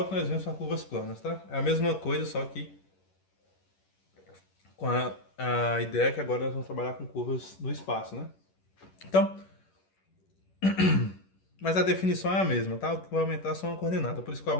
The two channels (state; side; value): late; right; 11 ms